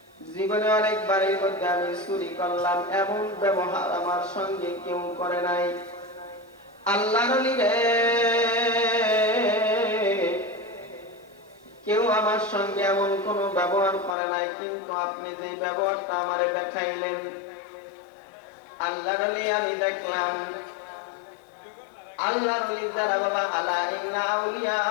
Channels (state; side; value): drops out; right; at 14.2 s